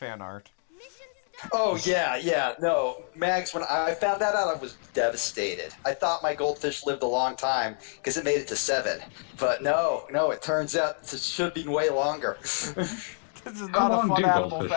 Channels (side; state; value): right; silent; 60 dB below the other